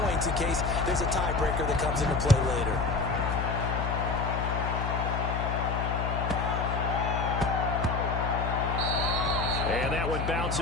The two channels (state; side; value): noise; left; hum, 2 dB below the sound